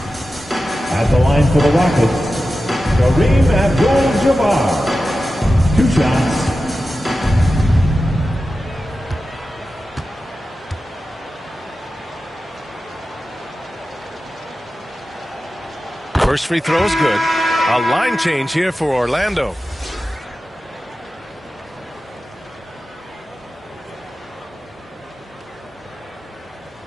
At the line for the Rockets, Kareem Abdul-Jabbar. 2 shots. First free throw is good. A line change here for Orlando.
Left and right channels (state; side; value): normal; both; correlation 0.93